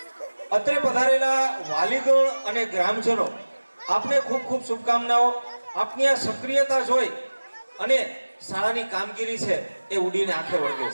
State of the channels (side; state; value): both; inverted; correlation -1.00